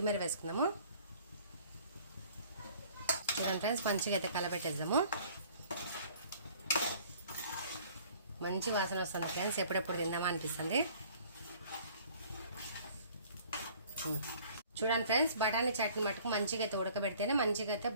వేసుకుందాము. చూడండి ఫ్రెండ్స్, మంచిగా అయితే కలబెట్టేద్దాము. మంచి వాసన వస్తుంది ఫ్రెండ్స్, ఎప్పుడెప్పుడు తిందామా అనిపిస్తుంది. చూడండి ఫ్రెండ్స్, బఠానీ చాట్ని మటుకు మంచిగా అయితే ఉడకబెడితేనే మంచిగా అయితే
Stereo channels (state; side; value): inverted; both; correlation -0.53